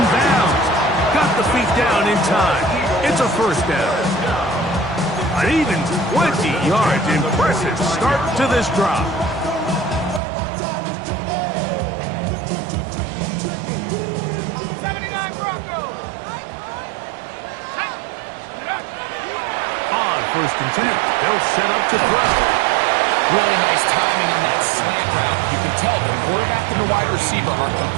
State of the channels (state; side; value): drops out; left; at 10.2 s